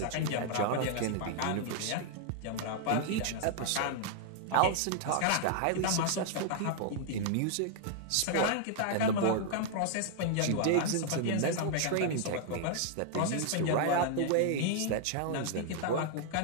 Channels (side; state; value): both; different; correlation 0.00